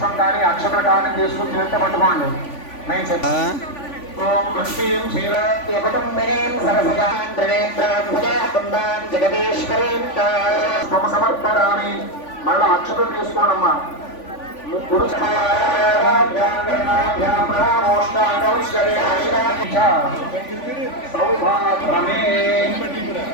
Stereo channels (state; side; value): late; right; 3.5 ms